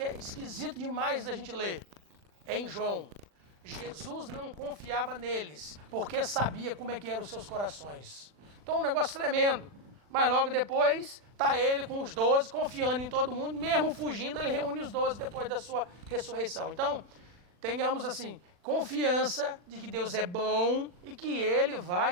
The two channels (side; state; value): left; late; 40 ms